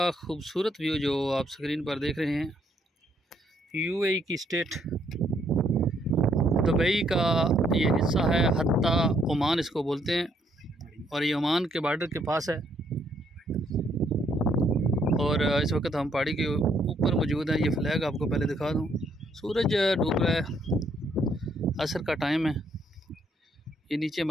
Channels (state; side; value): normal; both; correlation 0.70